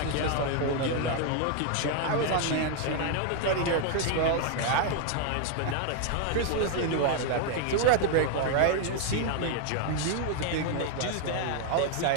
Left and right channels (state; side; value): different; both; correlation 0.00